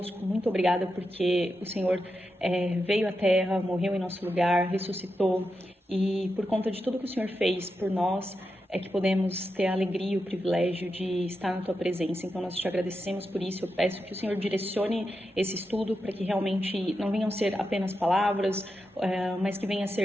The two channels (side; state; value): both; normal; correlation 0.87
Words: Muito obrigada porque o Senhor veio à Terra, morreu em nosso lugar, ressuscitou e por conta de tudo que o Senhor fez por nós, é que podemos ter a alegria e o privilégio de estar na Tua presença. Então, nós te agradecemos por isso. Eu peço que o Senhor direcione esse estudo para que realmente não venham ser apenas palavras, mas que venha a